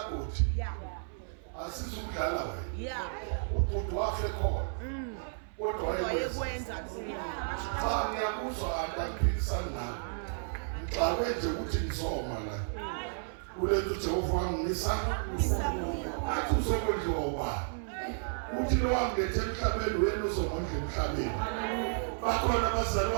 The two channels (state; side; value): silent; left; 56 dB below the other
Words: asizukudlala wena ubhuti wafe khona kodwa wayekwenza cha ngiyakuzwa anti angiphikisani nawe ngixakwe nje ukuthi ngizoma la kulethu Jehova wangisa athi uzokondliwa ubani uthi lo wangethe emhlabeni wena uzomondla emhlabeni bakhona